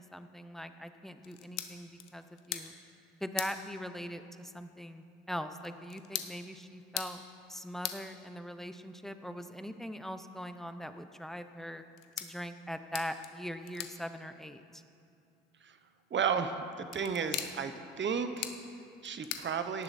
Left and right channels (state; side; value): normal; both; correlation 0.38